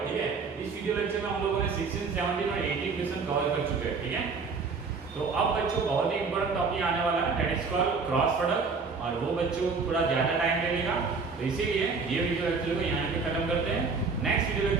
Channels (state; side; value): quieter; left; 4.7 dB